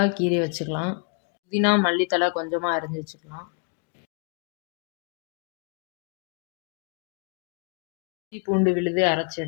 கீறி வச்சுக்கலாம். புதினா மல்லித்தலை கொஞ்சமாக அரிஞ்சு வச்சுக்கலாம். இஞ்சி பூண்டு விழுது அரைச்சி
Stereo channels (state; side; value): quieter; right; 38.3 dB